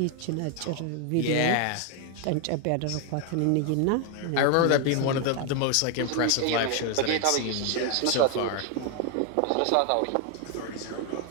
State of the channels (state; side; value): different; both; correlation 0.01